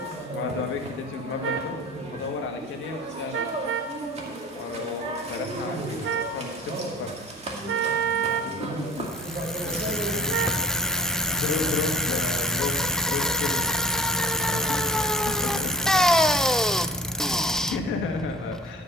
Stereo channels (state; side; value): normal; both; correlation 0.41